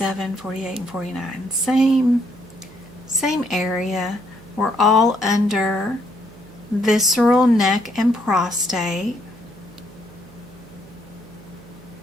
48, and 49. Same area. We're all under visceral, neck, and prostate.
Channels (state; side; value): noise; right; hum, 22 dB below the sound